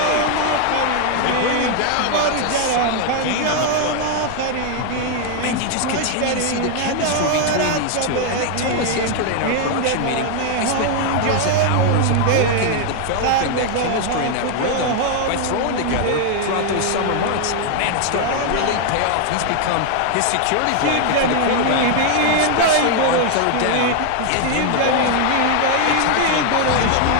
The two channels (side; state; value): both; different; correlation 0.00